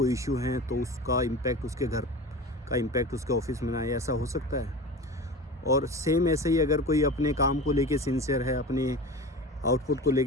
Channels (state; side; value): normal; both; correlation 0.32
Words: इशू है तो उसका इम्पैक्ट उसके घर का इम्पैक्ट उसके ऑफिस में ना आए, ऐसा हो सकता है? और सेम ऐसे ही अगर कोई अपने काम को लेके सिंसियर है, अपने आउटपुट को